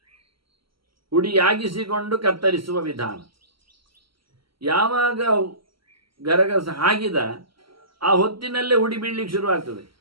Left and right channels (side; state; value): left; late; 0.74 ms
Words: ಹುಡಿಯಾಗಿಸಿಕೊಂಡು ಕತ್ತರಿಸುವ ವಿಧಾನ. ಯಾವಾಗ ಗರಗಸ ಹಾಕಿದ ಆ ಹೊತ್ತಿನಲ್ಲೇ ಹುಡಿ ಬೀಳಲಿಕ್ಕೆ ಶುರುವಾಗ್ತದೆ.